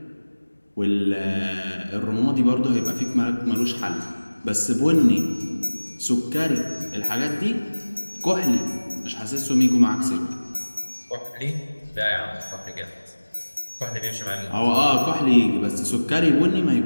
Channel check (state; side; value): inverted; both; correlation -1.00